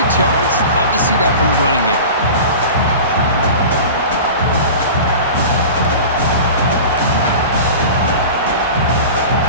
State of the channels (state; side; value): inverted; both; correlation -0.35